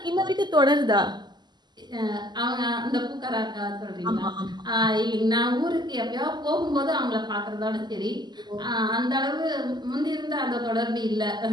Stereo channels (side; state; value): left; late; 0.21 ms